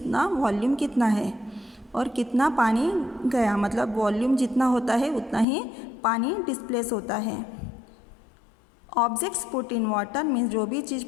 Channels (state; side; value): drops out; right; at 5.5 s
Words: वॉल्यूम कितना है और कितना पानी गया, मतलब वॉल्यूम जितना होता है उतना ही पानी डिस्प्लेस होता है। Objects put in water means जो भी चीज़